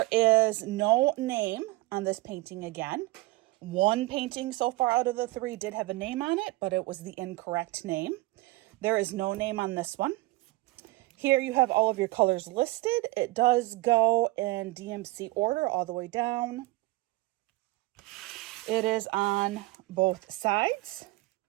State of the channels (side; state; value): left; quieter; 20.9 dB